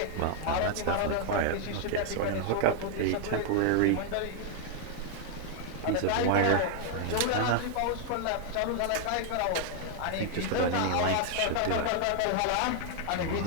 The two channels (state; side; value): different; both; correlation 0.00